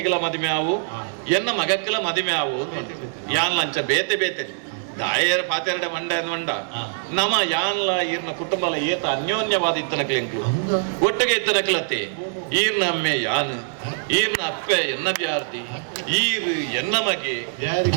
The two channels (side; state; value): left; silent; 63 dB below the other